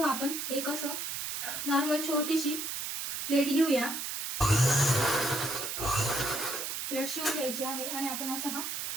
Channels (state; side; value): noise; right; hiss, 4 dB below the sound